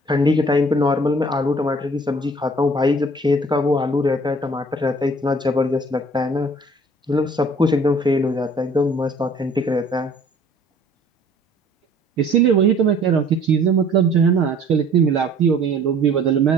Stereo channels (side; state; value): both; normal; correlation 0.53